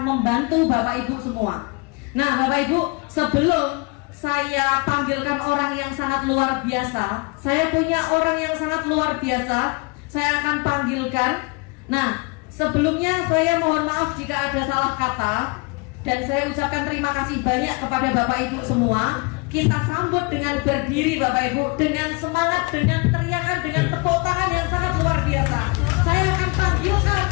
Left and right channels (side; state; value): right; quieter; 28.8 dB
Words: membantu Bapak Ibu semua. Nah, Bapak Ibu, sebelum saya panggilkan orang yang sangat luar biasa, saya punya orang yang sangat luar biasa. Saya akan panggilkan. Nah, Sebelumnya saya mohon maaf jika ada salah kata, dan saya ucapkan terima kasih banyak kepada Bapak Ibu semua. Kita sambut dengan berdiri Bapak Ibu, dengan semangat, dengan teriakan, dengan tepuk tangan yang sangat luar biasa. Saya akan panggilkan